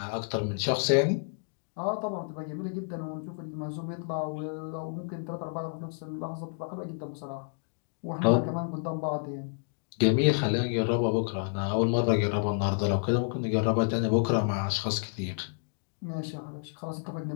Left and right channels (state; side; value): silent; right; digital silence